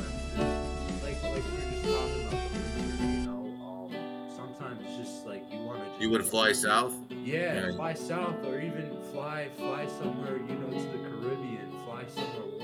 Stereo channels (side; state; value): both; identical; correlation 1.00